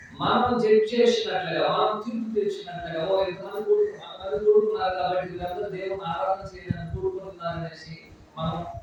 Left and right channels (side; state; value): both; identical; correlation 1.00